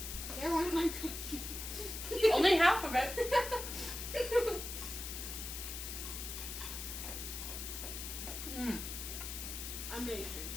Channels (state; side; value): noise; left; hiss, 6 dB below the sound